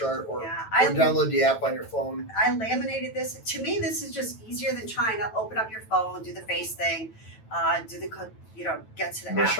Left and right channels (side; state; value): right; late; 9.1 ms